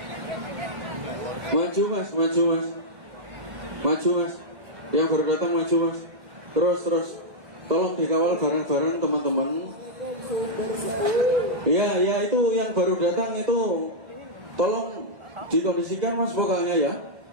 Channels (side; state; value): left; late; 2.1 ms